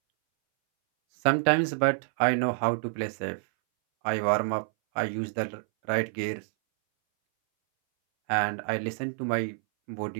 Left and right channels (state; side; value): silent; left; 59 dB below the other